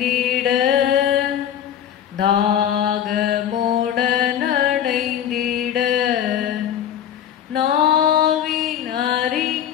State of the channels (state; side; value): quieter; right; 10.0 dB